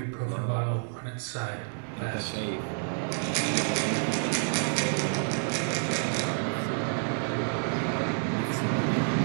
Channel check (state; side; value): silent; left; digital silence